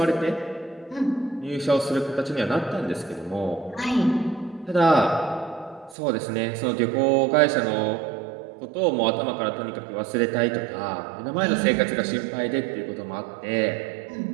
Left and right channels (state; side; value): drops out; left; at 6.0 s